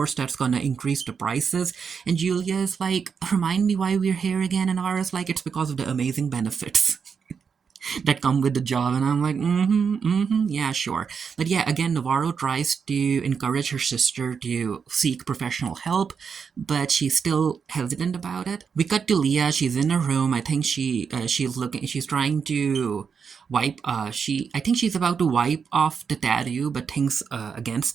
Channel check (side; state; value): left; quieter; 6.2 dB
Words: that's gonna increase the prices. And Julia is like, remind me why we're here again, and Navarro's like, it's because of the amazing benefits that come with the job. And I'm like, yeah, sure. But yeah, again, Navarro tries to encourage her sister to seek professional help, but she's still hesitant about it. We cut to Leah. She's in her room. I think she's trying to I think she's about to wipe off the tattoo, but thinks